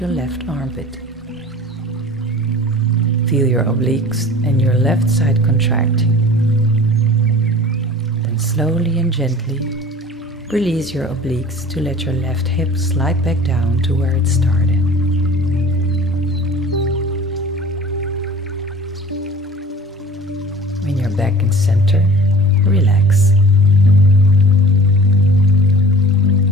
left armpit. Feel your obliques and your left side contracting. Then slowly and gently release your obliques to let your left hip slide back down to where it started. When you're back in center, relax.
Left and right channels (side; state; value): both; normal; correlation 0.42